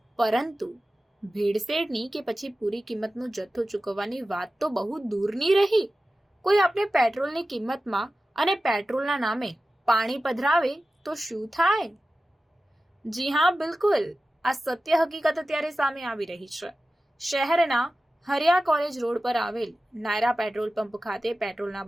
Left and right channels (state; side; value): normal; both; correlation 0.95